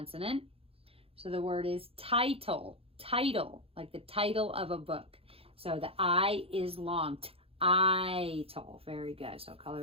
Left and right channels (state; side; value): late; left; 0.27 ms